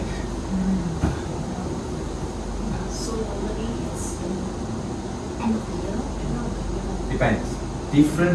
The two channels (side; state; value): both; identical; correlation 1.00